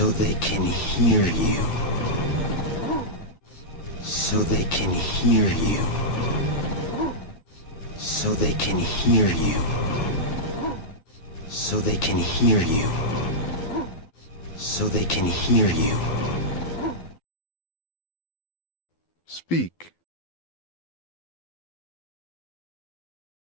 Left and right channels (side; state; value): right; late; 12 ms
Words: they can hear you. So they can hear you. So they can hear you. So they can hear you. So they can hear you. Speak.